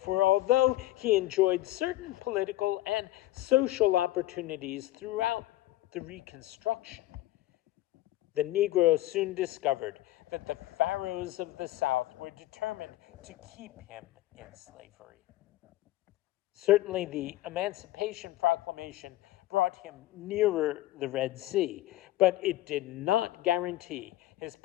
although he enjoyed certain political and social opportunities throughout the Reconstruction, the Negro soon discovered that the Pharaohs of the South were determined to keep him in slavery. Certainly, the Emancipation Proclamation brought him nearer the Red Sea, but it did not guarantee his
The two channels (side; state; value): right; quieter; 15.9 dB